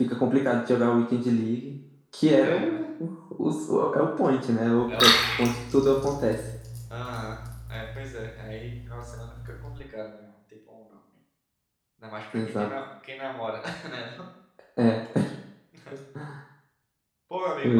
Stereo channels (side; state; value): both; identical; correlation 1.00